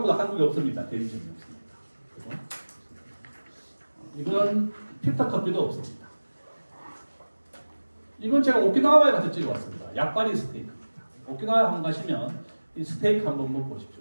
한국에 없습니다. 대리점이 없습니다. 그죠? 이건 필터 커피도 없습니다. 이건 제가 오키나와에 가서 찍어왔습니다. 약바리 스테이크입니다. 오키나와에 한번 가시면 이 스테이크 한번 먹어보십시오.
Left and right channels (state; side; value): inverted; both; correlation -1.00